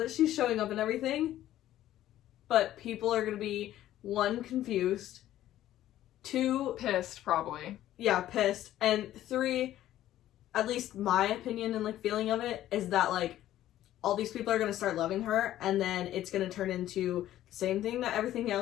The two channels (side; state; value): right; quieter; 13.2 dB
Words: she's showing up and everything. But people are going to be, 1, confused. 2... pissed, probably. Yeah, pissed. And 3, at least my opinion and, like, feeling of it, is that, like, all these people are going to start loving her, and then it's going to turn into the same thing that everything